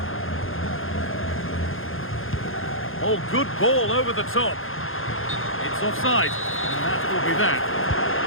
Oh, good ball over the top. It's offside, and that will be that.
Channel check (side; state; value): right; late; 0.60 ms